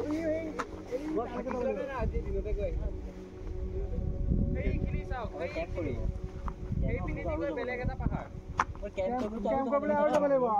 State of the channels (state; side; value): identical; both; correlation 1.00